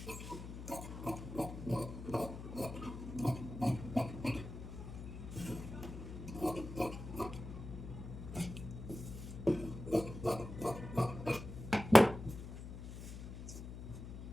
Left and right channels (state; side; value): noise; left; hum, 10 dB below the sound